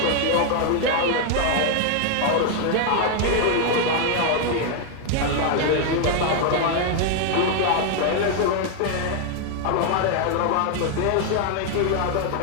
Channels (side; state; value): both; different; correlation 0.00